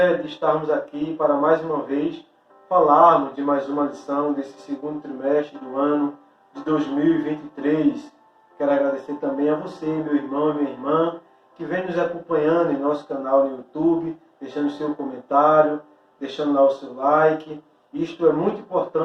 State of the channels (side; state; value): both; identical; correlation 1.00